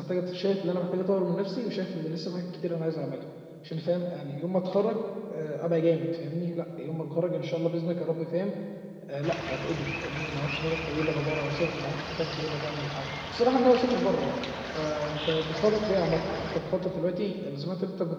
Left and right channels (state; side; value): identical; both; correlation 1.00